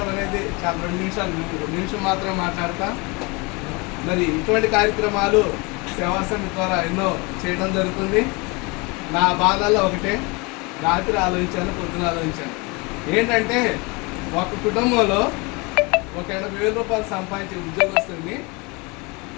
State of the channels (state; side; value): quieter; right; 27.7 dB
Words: అనేది చాలా 2 నిమిషం మాత్రమే మాట్లాడతా. మరి ఇటువంటి కార్యక్రమాలు సేవా సమితి ద్వారా ఎన్నో చేయడం జరుగుతుంది. నా బాధల్లో ఒకటే, రాత్రి ఆలోచించాను, పొద్దున ఆలోచించాను. ఏంటంటే ఒక కుటుంబంలో ఒక 80,000 రూపాయలు సంపాదించే ఉద్యోగస్తుని